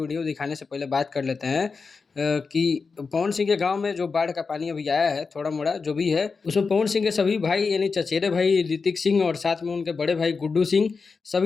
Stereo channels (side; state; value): right; quieter; 4.8 dB